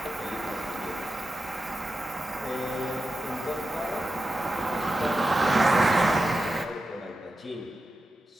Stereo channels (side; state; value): both; normal; correlation 0.91